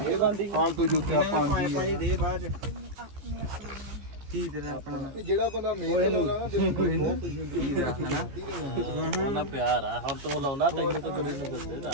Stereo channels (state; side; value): late; left; 15 ms